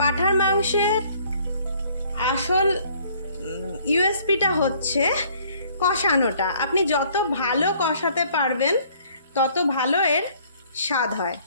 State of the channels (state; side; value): inverted; both; correlation -0.60